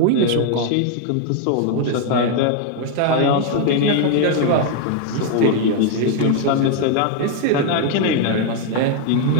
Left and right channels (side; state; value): both; different; correlation 0.00